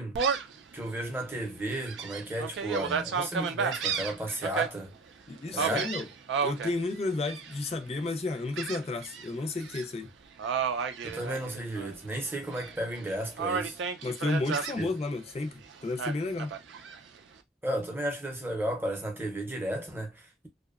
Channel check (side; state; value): both; normal; correlation 0.46